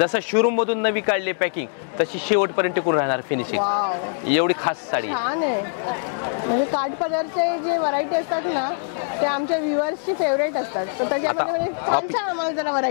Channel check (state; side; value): silent; right; digital silence